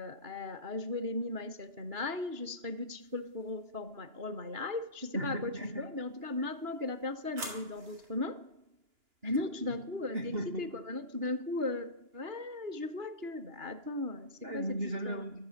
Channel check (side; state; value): left; late; 2.9 ms